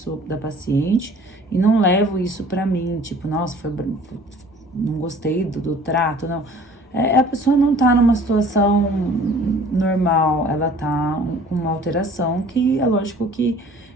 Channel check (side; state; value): both; normal; correlation 0.49